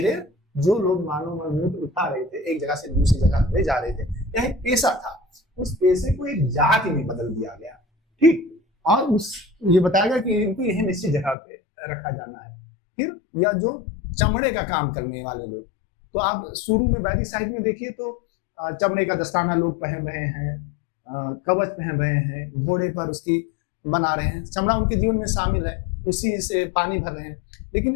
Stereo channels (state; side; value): drops out; right; at 11.4 s